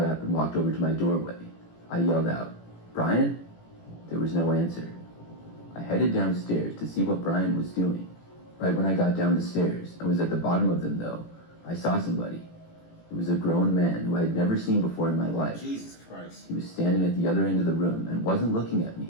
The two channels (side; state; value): right; late; 18 ms